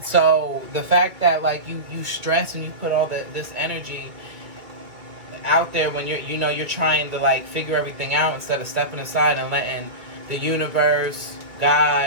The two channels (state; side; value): late; left; 2.3 ms